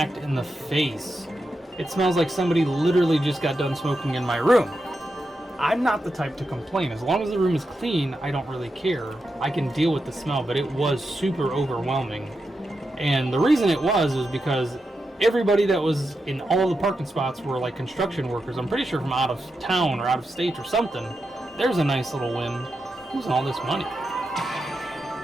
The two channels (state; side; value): normal; both; correlation 0.87